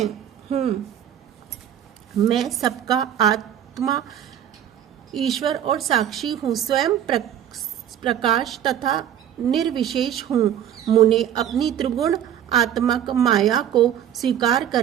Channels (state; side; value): quieter; left; 10.3 dB